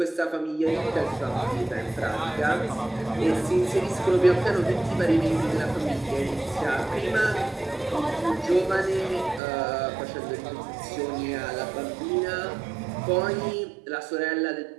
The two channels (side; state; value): left; drops out; at 9.4 s